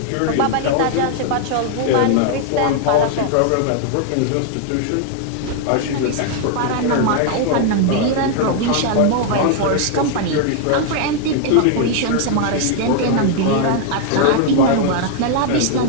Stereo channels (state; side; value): different; both; correlation 0.00